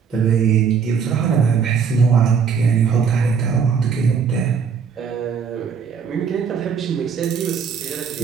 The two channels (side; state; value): left; quieter; 6.5 dB